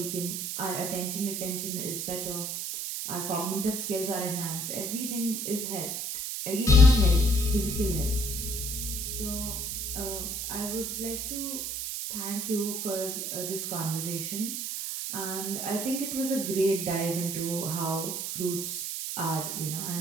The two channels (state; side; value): noise; right; hiss, 3 dB below the sound